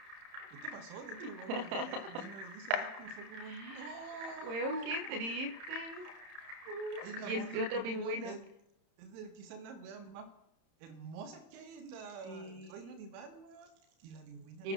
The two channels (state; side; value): late; left; 31 ms